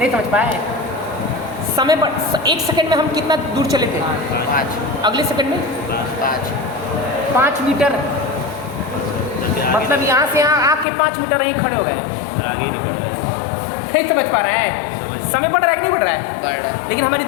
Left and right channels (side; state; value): right; drops out; at 10.9 s